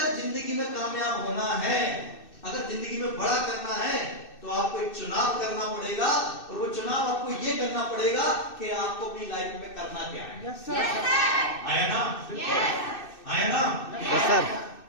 जिंदगी में कामयाब होना है, अगर जिंदगी में बड़ा करना है, तो आपको एक चुनाव करना पड़ेगा। और वो चुनाव आपको ये करना पड़ेगा कि आपको अपनी लाइफ में करना क्या है। आया ना? आया ना?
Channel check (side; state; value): right; late; 2.6 ms